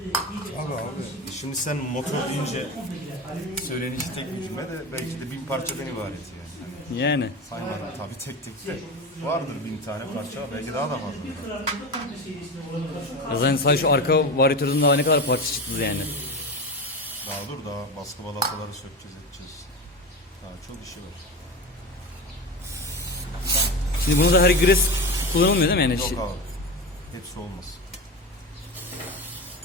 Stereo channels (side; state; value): both; normal; correlation 0.24